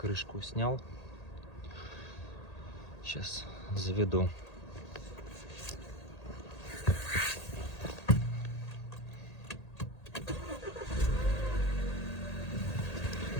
крышку снял. Сейчас заведу.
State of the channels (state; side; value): late; right; 1.8 ms